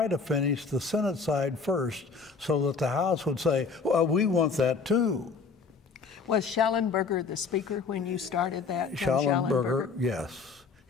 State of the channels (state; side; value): quieter; right; 4.9 dB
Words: to finish the Senate side first so that the House would say, well, we want that too. Was Schallenberger the speaker when you started that? Schallenberger, yes,